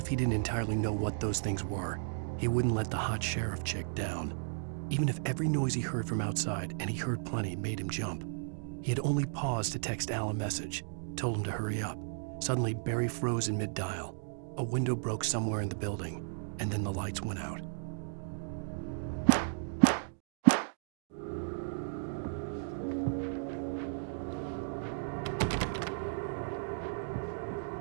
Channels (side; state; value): left; silent; digital silence